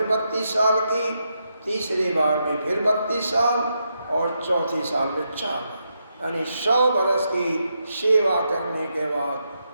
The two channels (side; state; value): both; inverted; correlation -0.83